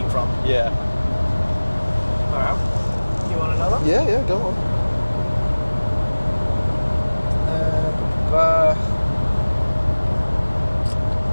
from. Yeah. Alright. You want another? Yeah, go on.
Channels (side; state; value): both; inverted; correlation -1.00